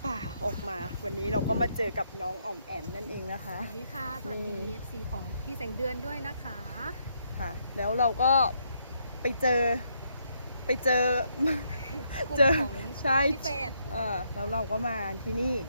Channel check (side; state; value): both; inverted; correlation -0.75